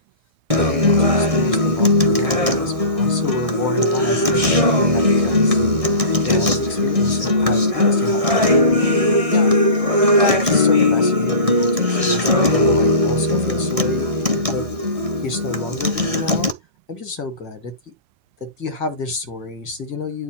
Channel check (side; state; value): left; late; 1.6 ms